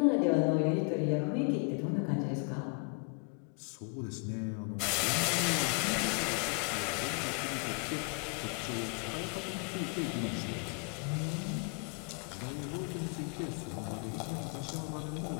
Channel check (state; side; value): quieter; right; 35.5 dB